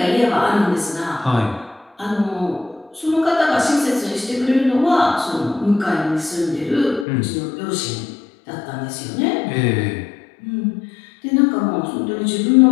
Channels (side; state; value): right; drops out; at 7.1 s